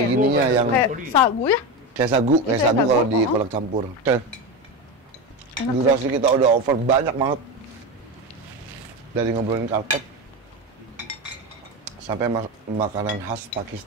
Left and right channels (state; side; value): normal; both; correlation 0.19